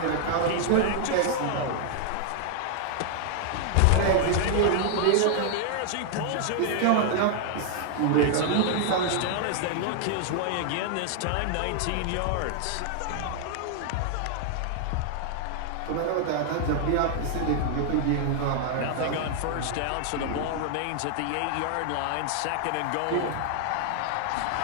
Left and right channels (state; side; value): different; both; correlation -0.01